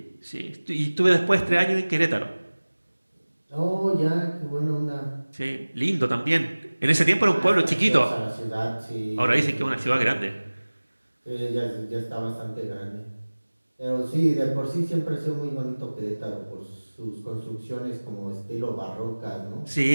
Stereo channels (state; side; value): inverted; both; correlation -1.00